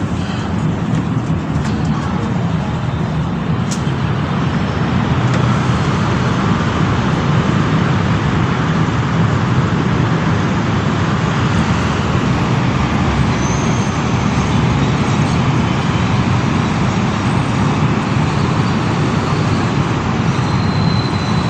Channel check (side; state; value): both; identical; correlation 1.00